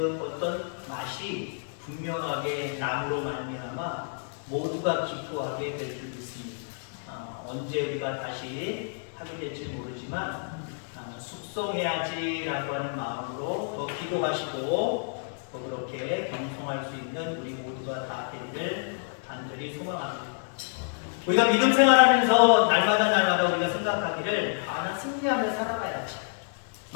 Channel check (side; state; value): right; silent; digital silence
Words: 어떤 맛이 분명하게 남으로 말미암아 모두가 기뻐하게 될 줄 믿습니다. 언제 우리가 다시 하게 될지 모르지만 숙성해야지라고 하는 마음으로 더 기도하시고 더 그렇게 경성할 수 있는 우리 모두가 다 되기를 간절히 소망합니다. 우리가 믿음 생활하면서 날마다 우리가 생각하기를 나 승리하며 살아가야지.